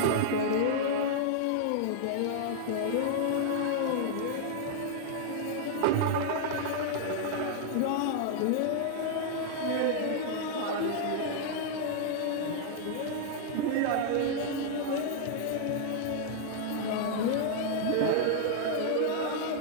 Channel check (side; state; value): both; different; correlation -0.01